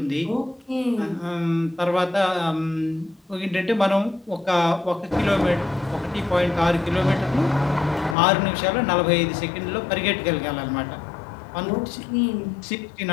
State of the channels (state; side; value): drops out; right; at 8.2 s